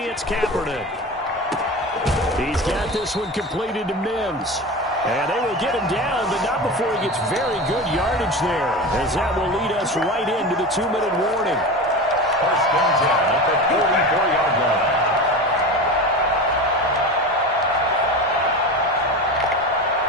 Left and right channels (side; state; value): both; normal; correlation 0.27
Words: Kaepernick. He's got this one completed to Mims. And they will get him down, but not before he gets very good yardage there, as that will lead us right into the 2-minute warning. First and 10 at the 44-yard line.